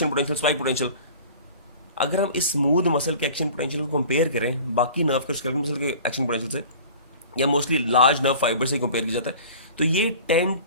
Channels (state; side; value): inverted; both; correlation -0.43